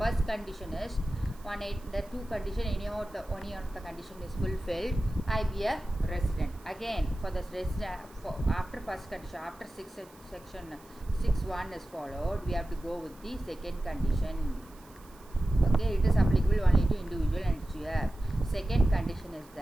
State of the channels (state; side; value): noise; right; hiss, 26 dB below the sound